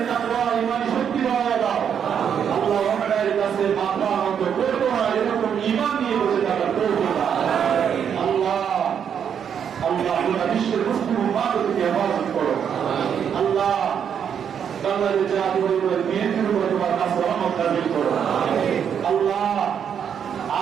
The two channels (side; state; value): left; quieter; 8.0 dB